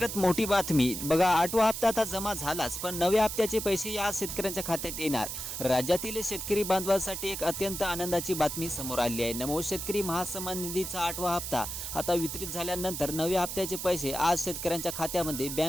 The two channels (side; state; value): right; noise; hiss, 5 dB below the sound